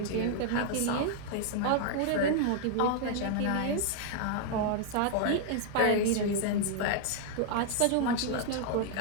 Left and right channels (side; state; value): both; different; correlation 0.00